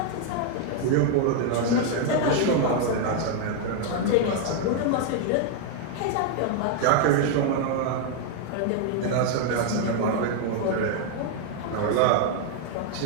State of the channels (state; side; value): different; both; correlation 0.00